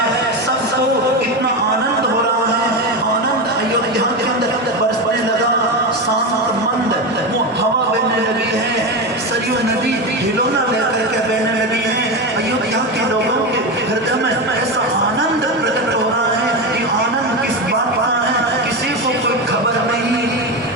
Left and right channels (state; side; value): normal; both; correlation 0.17